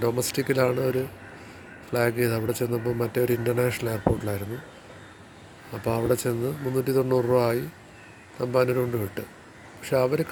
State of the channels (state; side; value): identical; both; correlation 1.00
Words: ഡൊമസ്റ്റിക്കിലാണ് ഒരു ഫ്ലാഗ് ചെയ്ത്. അവിടെ ചെന്നപ്പോൾ മറ്റേ ഒരു ഇൻ്റർനാഷണൽ എയർപോർട്ടിലായിരുന്നു. അപ്പോൾ അവിടെ ചെന്ന് 390 രൂപ ആയി, തമ്പാനൂർ കൊണ്ട് വിട്ട്. പക്ഷെ അവർ